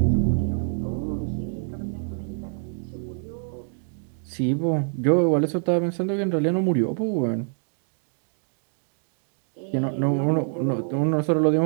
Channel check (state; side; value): silent; left; 61 dB below the other